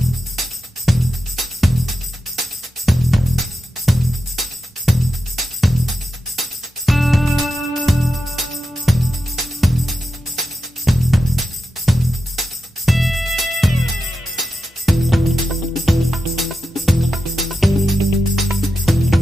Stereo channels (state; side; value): normal; both; correlation 0.90